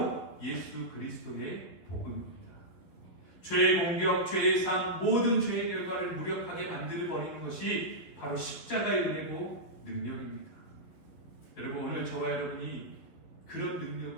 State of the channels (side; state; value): right; late; 11 ms